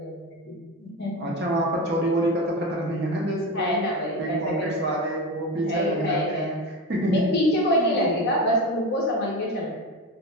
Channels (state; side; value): normal; both; correlation 0.22